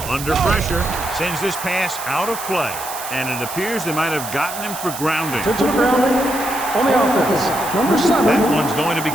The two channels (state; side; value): noise; right; hiss, 9 dB below the sound